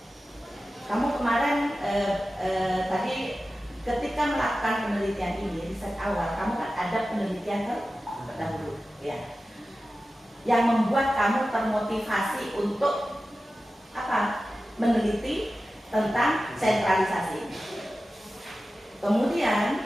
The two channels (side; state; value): both; normal; correlation 0.94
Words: Kamu kemarin tadi ketika melakukan penelitian ini, riset awal, kamu kan ada penelitian terdahulu, ya, yang membuat kamu termotivasi untuk apa? Meneliti tentang sentralisasi. Kemudian